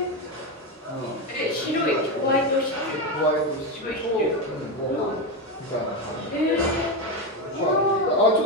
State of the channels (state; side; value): normal; both; correlation 0.12